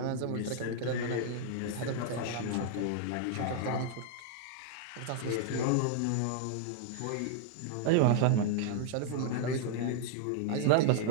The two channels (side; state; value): both; different; correlation 0.00